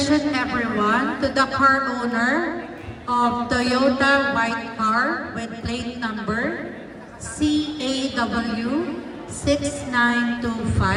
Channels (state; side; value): identical; both; correlation 1.00